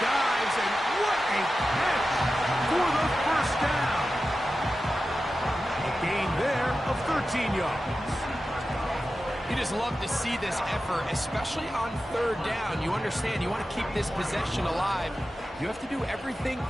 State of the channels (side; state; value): both; normal; correlation 0.93